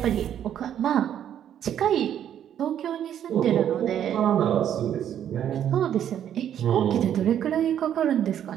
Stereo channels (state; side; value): quieter; left; 10.0 dB